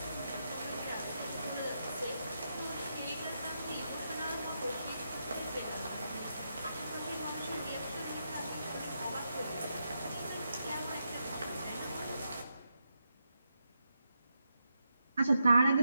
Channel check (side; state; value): both; inverted; correlation -0.84